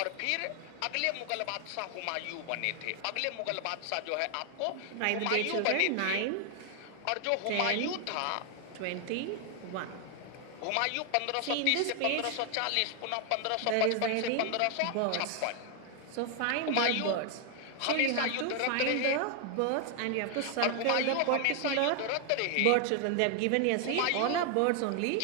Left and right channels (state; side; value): different; both; correlation 0.00